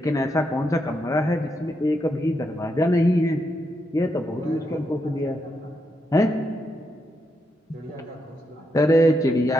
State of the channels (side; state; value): both; normal; correlation 0.82